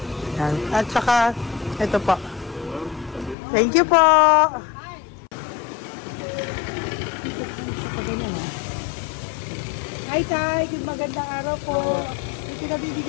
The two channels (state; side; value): drops out; right; at 3.4 s